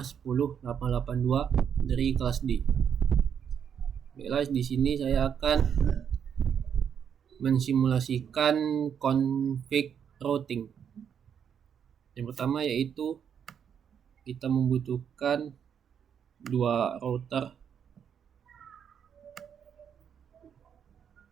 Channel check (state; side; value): quieter; left; 7.9 dB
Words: 2235108882 dari kelas D. Baiklah, di sini saya akan mensimulasikan config routing. Yang pertama yaitu kita membutuhkan dua router,